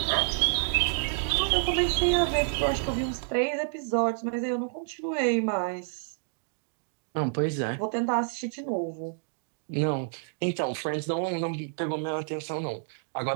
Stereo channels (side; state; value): left; silent; digital silence